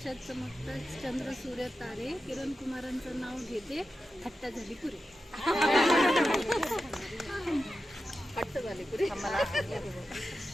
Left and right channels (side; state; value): both; normal; correlation 0.91